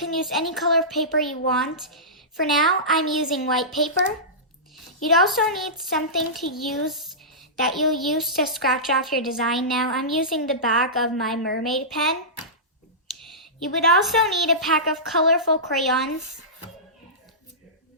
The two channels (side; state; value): both; normal; correlation -0.18